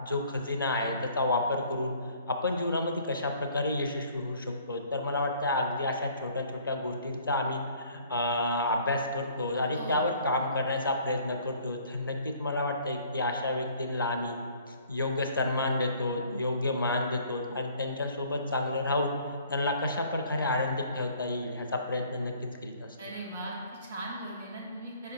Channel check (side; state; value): both; inverted; correlation -0.56